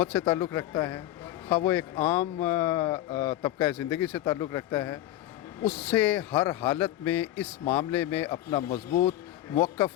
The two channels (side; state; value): right; quieter; 14.0 dB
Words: سے تعلق رکھتا ہے, خواہ وہ ایک عام طبقہ زندگی سے تعلق رکھتا ہے, اس سے ہر حالت میں اس معاملے میں اپنا مضبوط